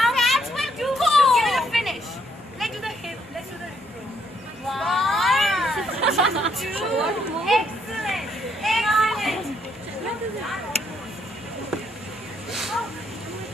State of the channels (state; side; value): normal; both; correlation 0.72